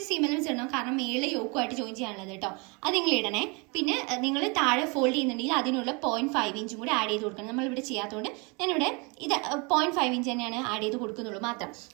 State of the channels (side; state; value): left; quieter; 30.1 dB